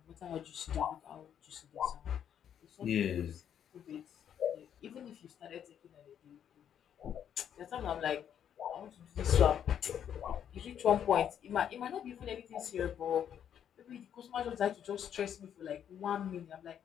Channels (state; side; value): quieter; right; 9.1 dB